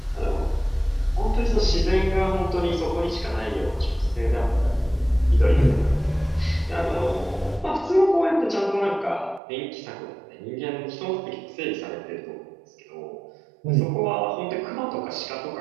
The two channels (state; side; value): drops out; left; at 9.4 s